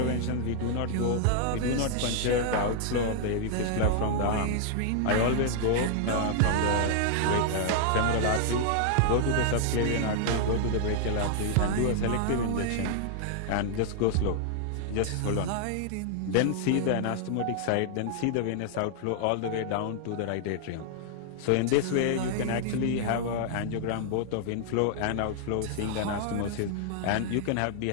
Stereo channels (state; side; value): different; both; correlation -0.01